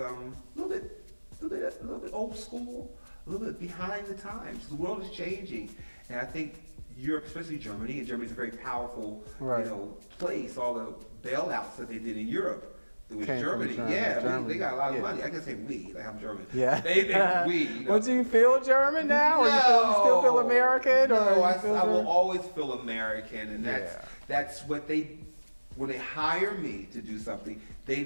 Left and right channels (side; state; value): both; inverted; correlation -1.00